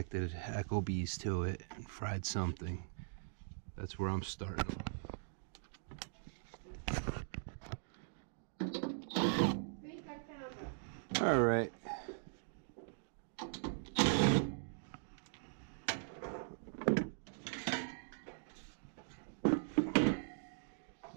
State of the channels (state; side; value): silent; left; digital silence